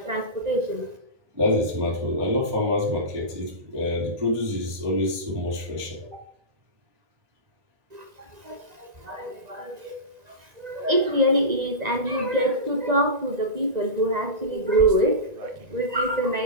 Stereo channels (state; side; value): late; left; 1.9 ms